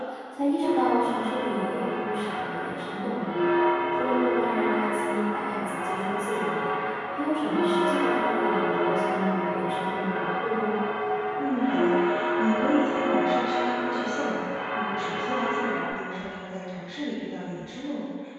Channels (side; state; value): both; identical; correlation 1.00